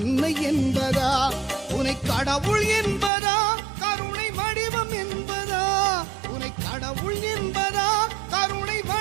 என்பதா உன்னை கடவுள் என்பதா கருணை வடிவம் என்பதா உன்னை கடவுள் என்பதா கருணை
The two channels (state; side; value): drops out; left; at 3.1 s